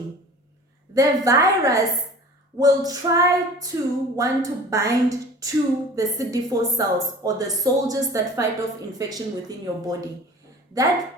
the virus will try to want to bind to the CD4 cells or the soldiers that fight off infection within your body. That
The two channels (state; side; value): normal; both; correlation 0.43